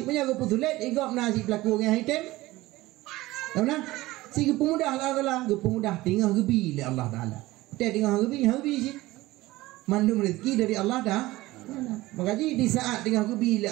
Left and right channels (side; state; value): left; quieter; 18.5 dB